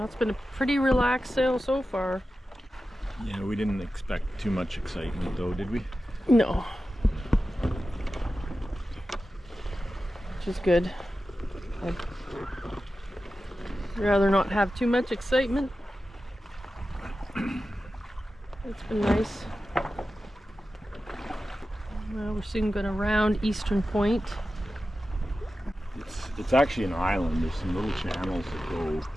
it's been a pretty relaxed sail so far. Yeah, we didn't expect too much excitement though, did we? No. Which is good. I'd rather not have too much excitement. It's been nice. Well, we're soon going to round Eastern Point. It's actually an island. There's some little channels that go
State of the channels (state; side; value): normal; both; correlation 0.93